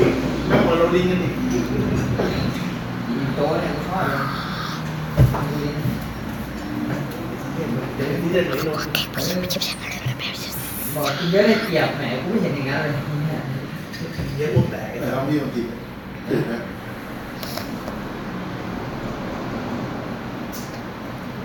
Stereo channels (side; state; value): both; identical; correlation 1.00